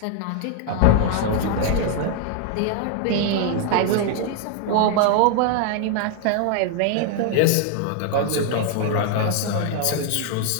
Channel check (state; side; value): different; both; correlation 0.00